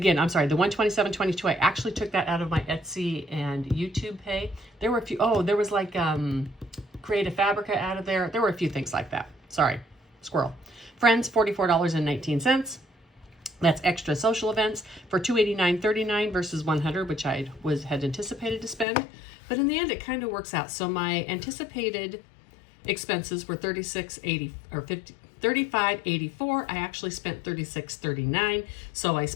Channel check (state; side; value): drops out; right; at 18.9 s